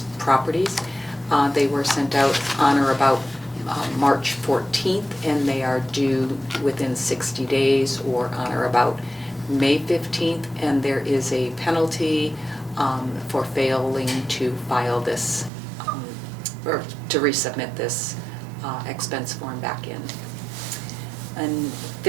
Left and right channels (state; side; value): drops out; left; at 15.5 s